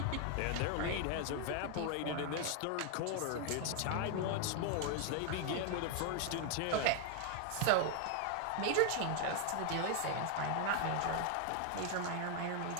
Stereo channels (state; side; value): different; both; correlation 0.00